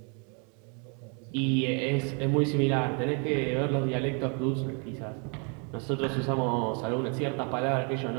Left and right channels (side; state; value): left; quieter; 37.2 dB